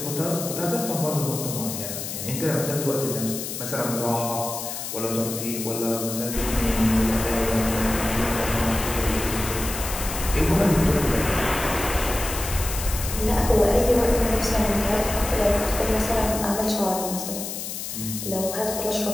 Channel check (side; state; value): left; noise; hiss, 6 dB below the sound